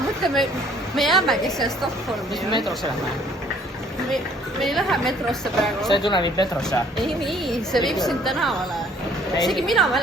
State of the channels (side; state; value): both; normal; correlation 0.59